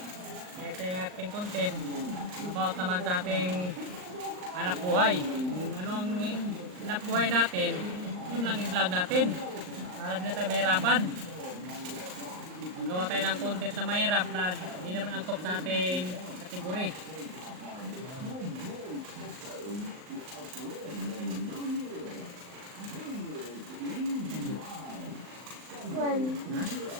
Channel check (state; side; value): late; left; 39 ms